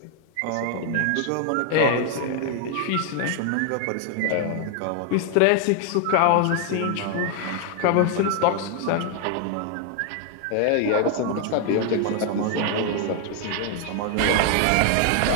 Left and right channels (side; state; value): both; different; correlation 0.00